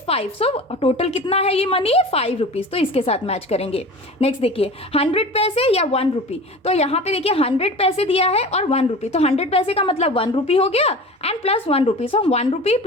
5। सो टोटल कितना है ये मनी, 5 रुपीज। तो इसके साथ मैच करेंगे। नेक्स्ट देखिए 100 पैसे या 1 रुपी। तो यहाँ पे देखिए 100 पैसे दिया है और 1 रुपी, तो 100 पैसे का मतलब 1 रुपी हो गया एंड प्लस 1 रुपी। सो 1 रुपी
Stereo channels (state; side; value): normal; both; correlation 0.36